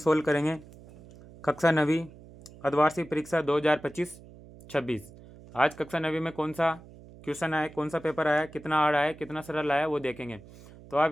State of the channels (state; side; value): noise; right; hum, 20 dB below the sound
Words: करेंगे कक्षा 9वीं अर्धवार्षिक परीक्षा 2025-26। आज कक्षा 9वीं में कौन सा क्वेश्चन आया, कौन सा पेपर आया, कितना हार्ड आया, कितना सरल आया, वो देखेंगे। तो आप